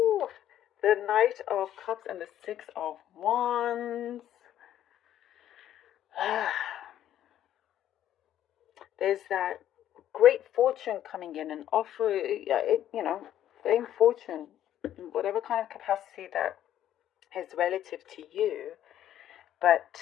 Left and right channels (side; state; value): right; quieter; 11.5 dB